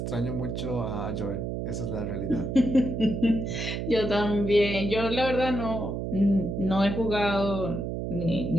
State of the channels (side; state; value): right; noise; hum, 3 dB below the sound